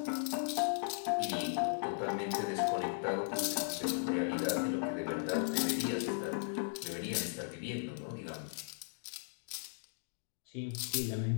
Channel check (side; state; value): right; silent; digital silence